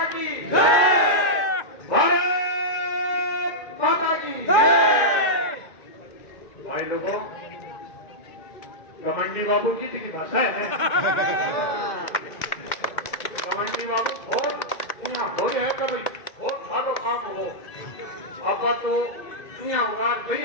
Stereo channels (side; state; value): right; late; 1.9 ms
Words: की जय, भारत माता की जय। भाई लोगों, घमंडी बाबू की दिखी भाषा है। घमंडी बाबू बहुत यहाँ हो रहे हैं कि भाई बहुत सारो काम हो, आपका तो यहाँ होगा